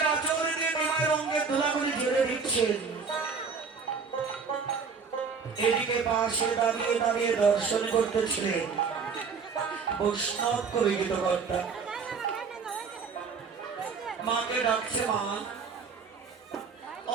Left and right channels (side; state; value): left; quieter; 5.4 dB